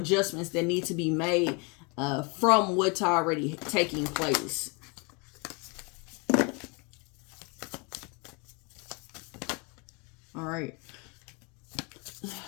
that need to be made from what's already taking place. All right.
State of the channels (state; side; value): quieter; right; 31.5 dB